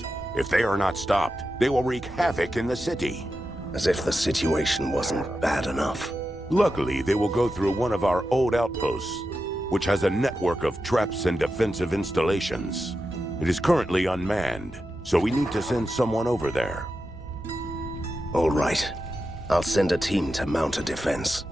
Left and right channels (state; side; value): normal; both; correlation 0.90